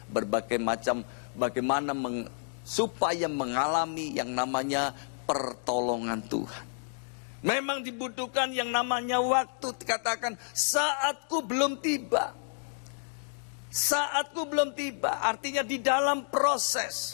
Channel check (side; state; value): right; silent; digital silence